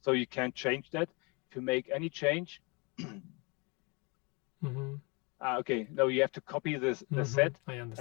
you can't change that. If you make any change, okay, no, you have to copy the set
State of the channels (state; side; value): quieter; right; 29.8 dB